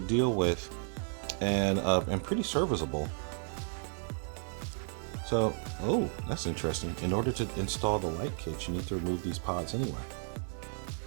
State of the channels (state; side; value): silent; left; 56 dB below the other